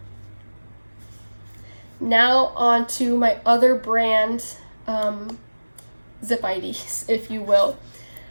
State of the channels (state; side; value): inverted; both; correlation -1.00